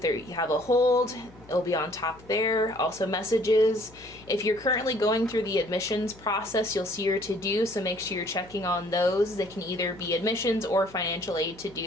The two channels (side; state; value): left; noise; hum, 23 dB below the sound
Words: you have a hold, it'll be on top there. Also messages. If you're currently going through the admissions process, you'll see your to-do, so make sure you're checking on those. They can either be admissions or financial aid